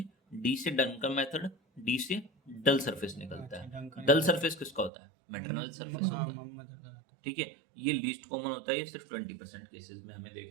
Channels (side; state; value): left; drops out; at 4.9 s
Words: डी से डंकन मेथड, डी से डल सरफेस निकलता है। डंकन डल सरफेस किसका होता है? मेटरनल सरफेस हाँ, होता है। ठीक है, ये लीस्ट कॉमन होता है। ये सिर्फ 20% केसेस में हमें